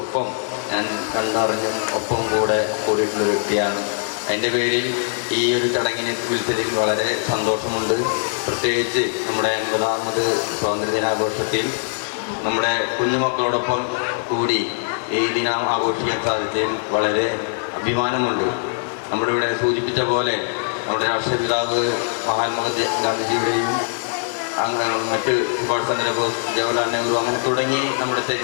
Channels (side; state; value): right; silent; 62 dB below the other